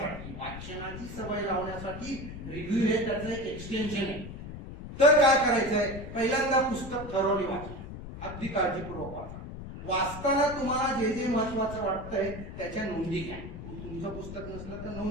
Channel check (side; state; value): left; noise; rumble, 10 dB below the sound